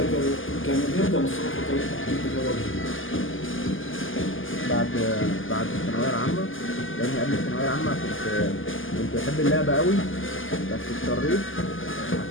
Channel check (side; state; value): right; late; 0.58 ms